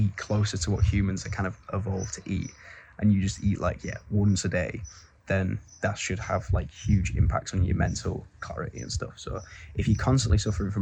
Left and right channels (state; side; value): identical; both; correlation 1.00